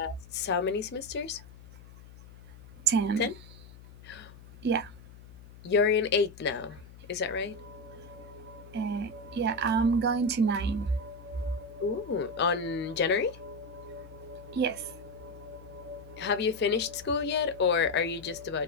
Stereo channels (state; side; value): noise; left; hum, 19 dB below the sound